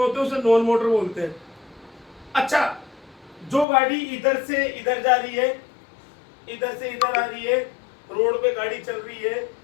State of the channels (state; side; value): drops out; right; at 3.7 s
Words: होते हैं उसे नॉन मोटर बोलते हैं। अच्छा, जो गाड़ी इधर से इधर जा रही है, इधर से इधर आ रही है, रोड पे गाड़ी चल रही है,